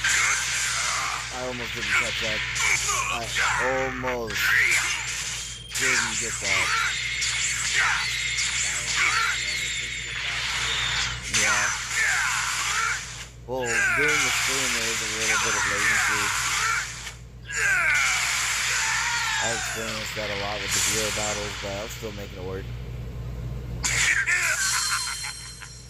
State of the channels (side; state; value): both; identical; correlation 1.00